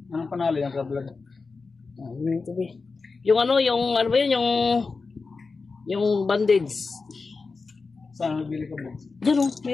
Anong panalo yung ka-vlog? Yung ano ba yun? Yung bandage. Saan nabili ka ba? Diyan o,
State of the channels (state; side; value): quieter; right; 4.3 dB